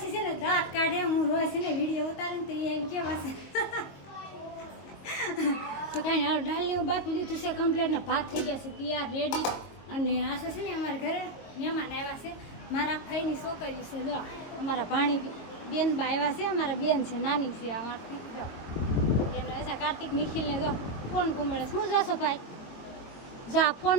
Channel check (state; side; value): late; right; 22 ms